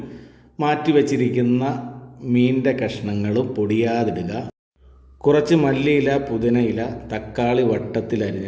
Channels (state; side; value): identical; both; correlation 1.00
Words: മാറ്റി വെച്ചിരിക്കുന്ന മീനിൻ്റെ കഷ്ണങ്ങളും പൊടിയാതിടുക. കുറച്ച് മല്ലിയില, പുതിനയില, തക്കാളി വട്ടത്തിൽ